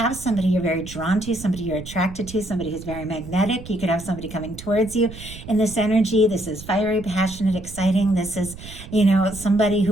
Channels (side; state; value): right; noise; rumble, 14 dB below the sound